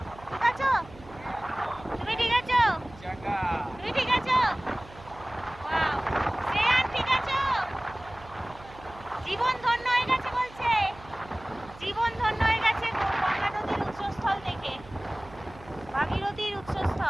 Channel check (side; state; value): right; noise; hum, 20 dB below the sound